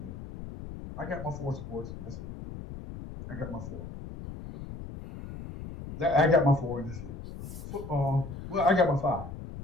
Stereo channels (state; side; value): noise; left; rumble, 11 dB below the sound